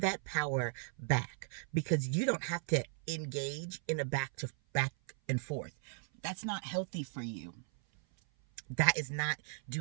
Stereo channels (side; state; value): left; silent; 53 dB below the other